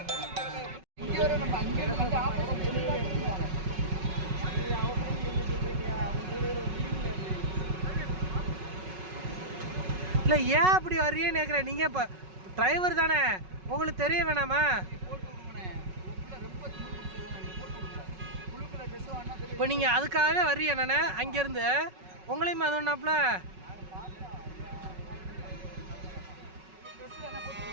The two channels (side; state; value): left; late; 5.4 ms